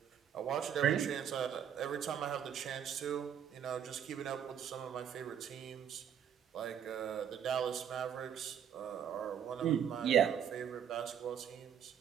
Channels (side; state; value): left; quieter; 8.9 dB